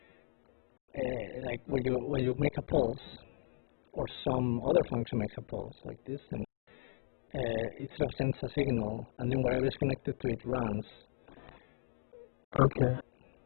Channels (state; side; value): silent; right; digital silence